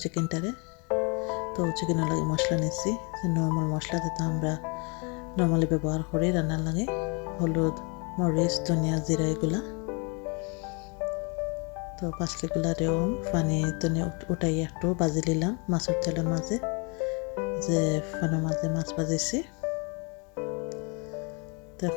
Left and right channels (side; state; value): right; quieter; 32.9 dB